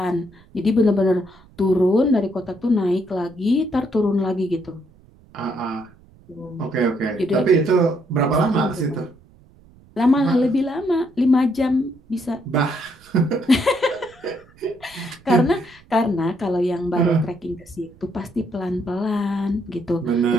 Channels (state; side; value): noise; right; rumble, 27 dB below the sound